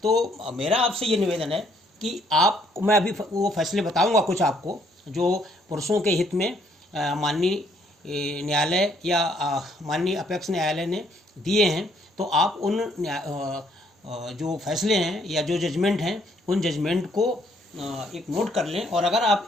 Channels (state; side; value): normal; both; correlation 0.67